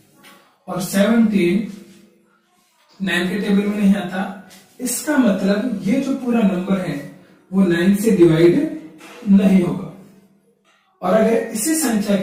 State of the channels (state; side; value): identical; both; correlation 1.00